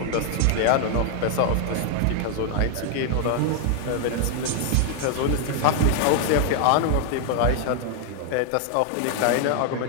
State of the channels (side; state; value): both; different; correlation 0.00